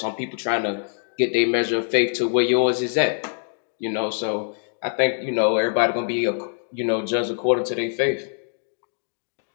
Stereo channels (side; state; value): right; silent; digital silence